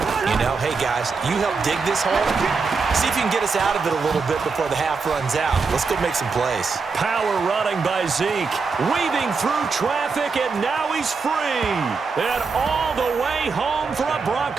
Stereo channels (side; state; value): left; quieter; 4.8 dB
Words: You know, hey, guys, you help dig this hole. See if you can get us out of it a little bit before the half runs out. Let's go make some plays. Power running by Zeke. Weaving through traffic, and now he's free. And all the way home for a